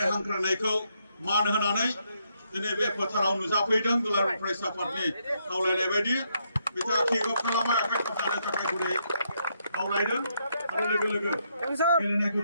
हांख्रायनायखौ मान होनानै दिनै बे फोथाराव नुजाफैदों दुलाराय फरायसा आफादनि खावलायनाय बायदि बिथाङा किक अफ खालामबाय आखाइ खबजानो थाखाय गुरै खावलायदों आरो लोगो लोगो गेलेनायखौ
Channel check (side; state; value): both; inverted; correlation -0.77